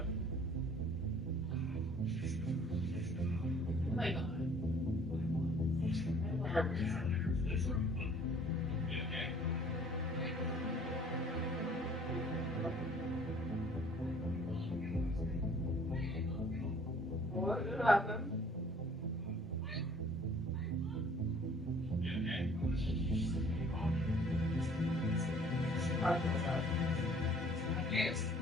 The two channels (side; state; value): both; normal; correlation 0.55